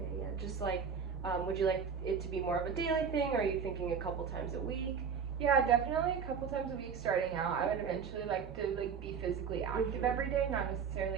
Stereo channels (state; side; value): quieter; left; 6.5 dB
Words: yeah, just like, would you like it to be more of a daily thing, or are you thinking a couple times a week? Yeah, definitely a couple times a week starting out. I would eventually like to be physically active every day, not